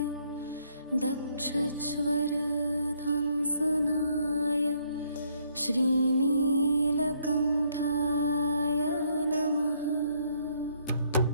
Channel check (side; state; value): both; inverted; correlation -0.69